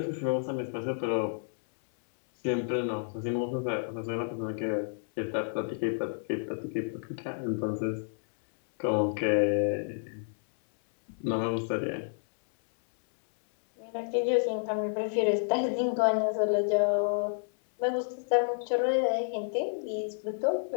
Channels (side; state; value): right; silent; 58 dB below the other